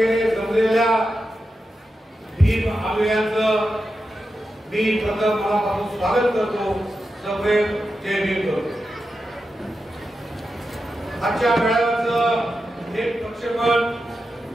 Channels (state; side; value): normal; both; correlation 0.90